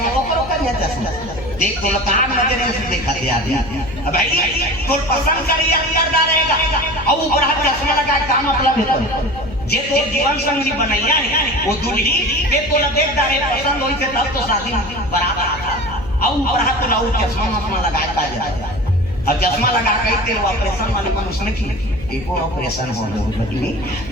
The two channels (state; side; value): noise; left; hum, 14 dB below the sound